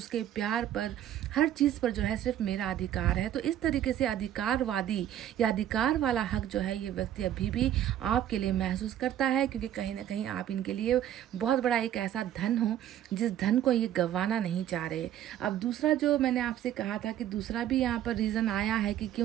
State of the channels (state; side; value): quieter; left; 11.4 dB